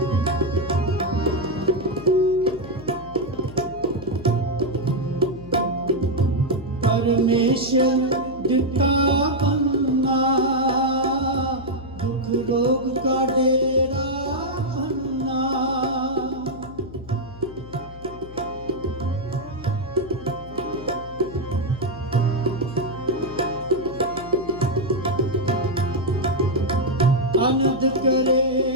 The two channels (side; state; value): left; noise; hum, 16 dB below the sound